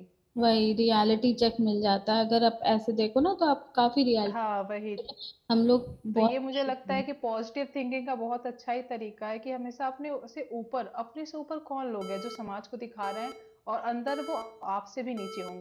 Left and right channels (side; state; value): both; identical; correlation 1.00